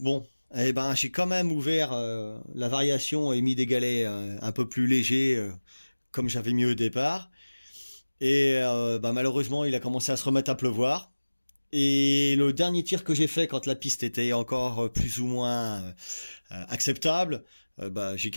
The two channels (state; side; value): inverted; both; correlation -1.00